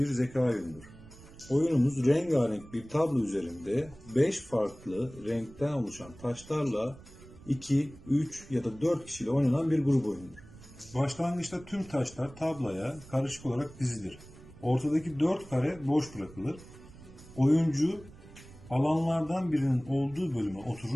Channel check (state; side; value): noise; right; rumble, 20 dB below the sound